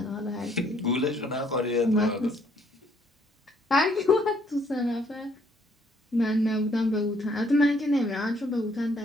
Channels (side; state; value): both; normal; correlation 0.66